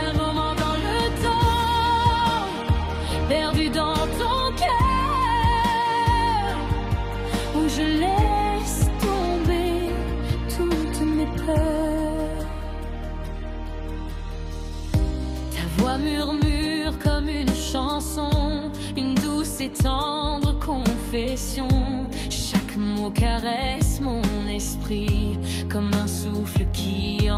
Un moment dans le temps, perdu dans ton cœur, où je laisse tomber toutes mes peurs. Ta voix murmure comme une chanson, une douce et tendre confession. Chaque mot caresse mon esprit comme un souffle qui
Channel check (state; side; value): identical; both; correlation 1.00